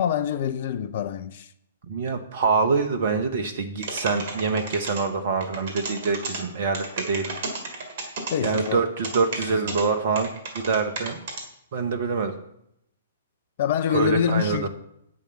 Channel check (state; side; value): inverted; both; correlation -0.50